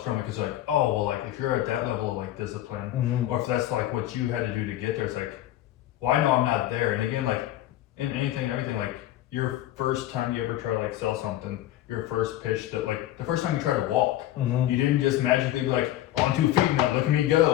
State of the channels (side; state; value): right; quieter; 13.7 dB